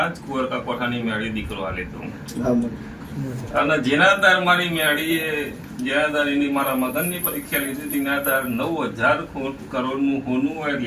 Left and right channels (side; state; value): both; identical; correlation 1.00